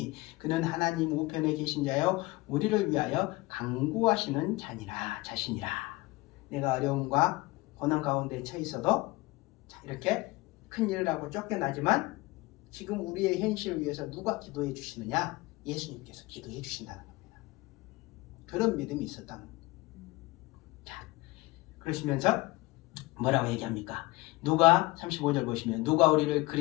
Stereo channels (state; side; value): quieter; right; 21.2 dB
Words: 그는 하나님 우편에 계신 자요 우리를 위하여 강구하시는 자신이라. 내가 어려움과 고난 가운데 처해 있어도, 자, 이렇게 큰 일을 하고 쫓겨나지만 지금 우리의 현실을 위해서 누가 기도해 주시느냐? 예수님께서 기도해 주신다는 겁니다. 그런 믿음이 있었다는 겁니다. 자, 그러시면서 뭐라고 얘기합니까? 누가 35절 보시면 누가 우리를